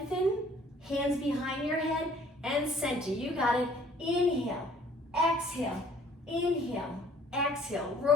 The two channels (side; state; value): both; normal; correlation 0.57